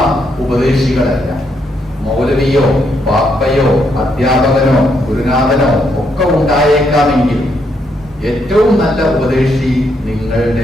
ഉപദേശികളല്ല. മൗലവിയോ പാപ്പയോ അധ്യാപകനോ ഗുരുനാഥനോ ഒക്കെ ഉണ്ടായേക്കാമെങ്കിൽ ഏറ്റവും നല്ല ഉപദേശി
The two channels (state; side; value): normal; both; correlation 0.76